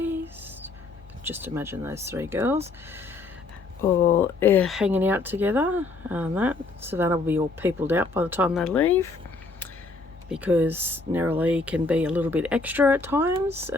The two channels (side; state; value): right; quieter; 3.5 dB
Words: Just imagine those three girls all hanging out together. That Savannah will be all peopled out by the time they leave, because Neroli can be a little bit extra at times,